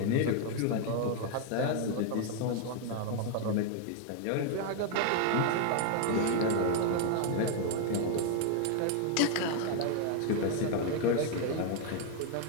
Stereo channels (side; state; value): both; different; correlation 0.00